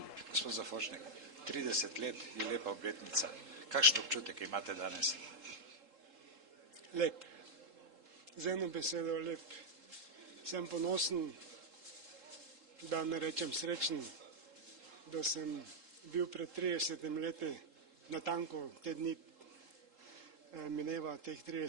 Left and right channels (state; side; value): late; left; 3.7 ms